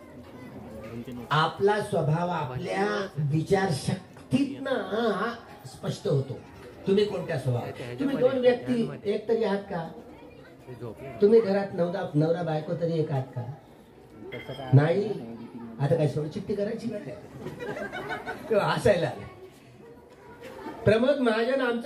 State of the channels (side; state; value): both; identical; correlation 1.00